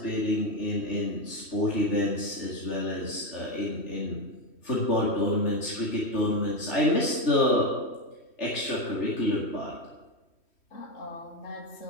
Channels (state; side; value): late; right; 3.1 ms